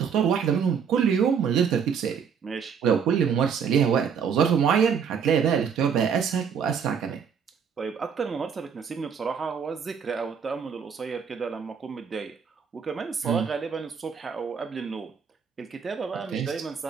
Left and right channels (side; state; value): left; quieter; 6.9 dB